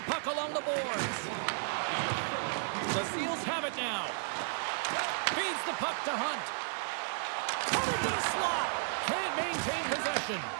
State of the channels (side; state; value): left; silent; 55 dB below the other